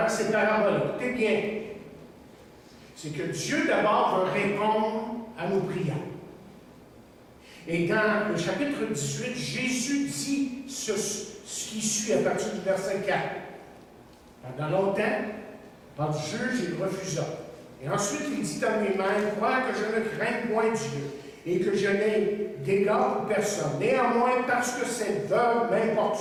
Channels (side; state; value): both; identical; correlation 1.00